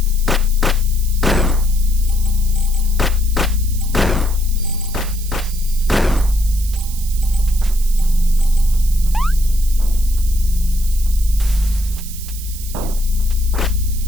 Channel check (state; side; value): noise; right; hiss, 13 dB below the sound